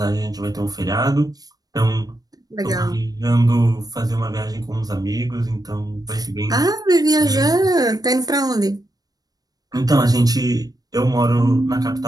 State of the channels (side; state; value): left; late; 0.19 ms